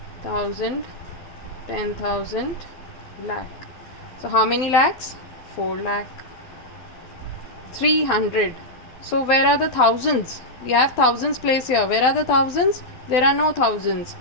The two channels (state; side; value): late; right; 12 ms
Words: 1,000, 10,000, lakh. So how many lakhs? 4 lakh. 300. So where are the thousands? We have thousands place here. Where are the thousands? There are no thousands.